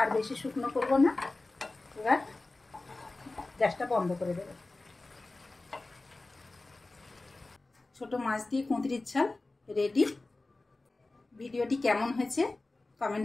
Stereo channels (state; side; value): quieter; right; 3.1 dB